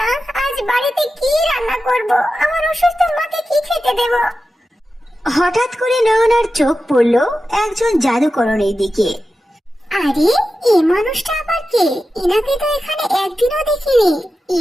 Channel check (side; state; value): both; normal; correlation 0.92